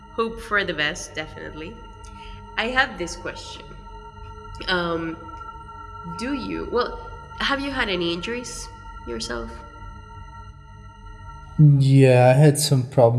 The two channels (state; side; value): identical; both; correlation 1.00